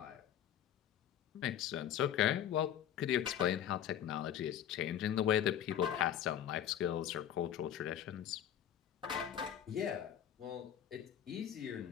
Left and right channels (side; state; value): right; quieter; 10.2 dB